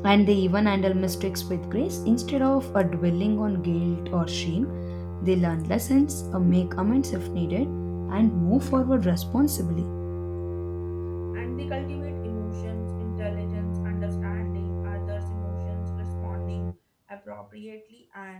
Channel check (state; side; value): identical; both; correlation 1.00